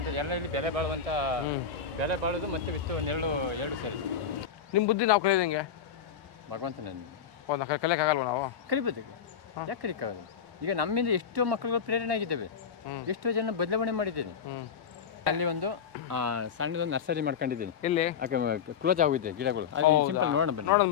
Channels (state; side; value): quieter; right; 7.4 dB